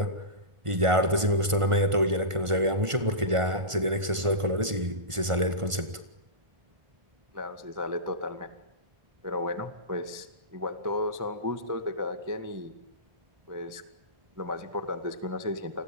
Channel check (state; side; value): late; left; 1.5 ms